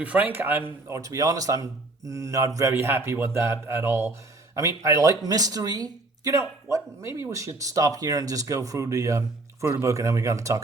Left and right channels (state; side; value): quieter; left; 3.0 dB